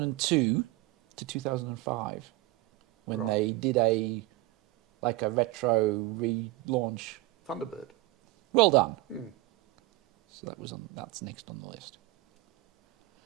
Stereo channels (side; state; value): left; quieter; 18.7 dB